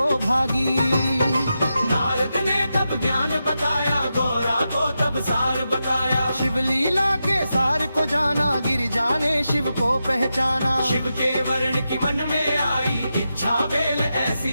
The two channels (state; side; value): inverted; both; correlation -0.88